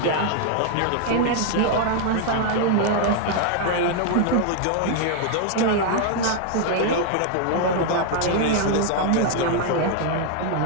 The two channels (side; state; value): both; different; correlation 0.00